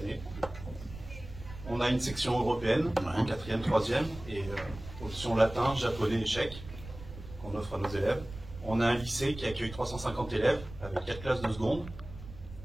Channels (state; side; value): noise; right; rumble, 14 dB below the sound